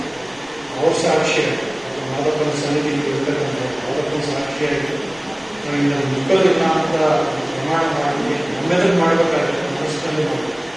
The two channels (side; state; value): left; noise; rumble, 30 dB below the sound